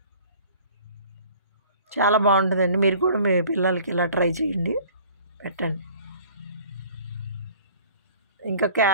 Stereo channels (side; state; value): both; inverted; correlation -0.50